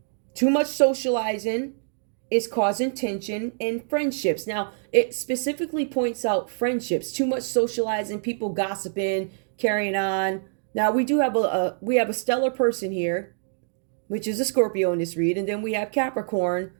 Too much socializing is causing tension in friendships. Now, it specifically points out friendships. Too much socializing, people gossiping, carrying on. Now, we do have a stellar person here, which is a Scorpio in this read, and then we have Capricorn,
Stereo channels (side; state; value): left; silent; digital silence